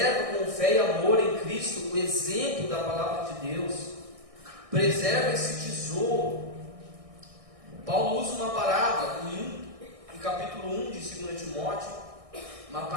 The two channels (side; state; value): left; late; 1.6 ms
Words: com fé e amor em Cristo o exemplo da palavra de Deus. Preserva esse tesouro. Paulo usa uma parábola em capítulo 1 de 2 Timóteo, uma